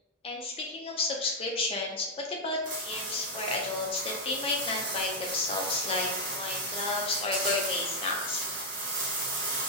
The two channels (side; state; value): both; normal; correlation 0.00